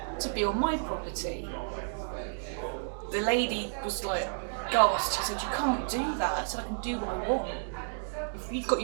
to be on my property. The lady was like gasped. She said you can't do that. I said I can do what I want. If you've got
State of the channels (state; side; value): silent; left; digital silence